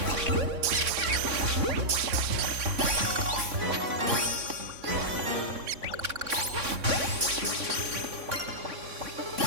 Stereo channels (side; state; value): left; late; 3.6 ms